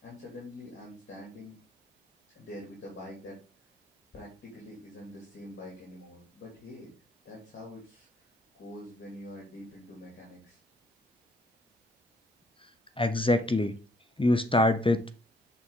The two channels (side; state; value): both; normal; correlation 0.66